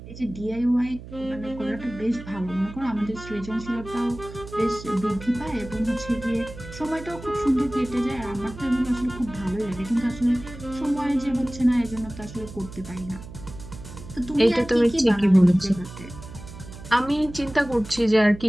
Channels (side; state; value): right; noise; hum, 14 dB below the sound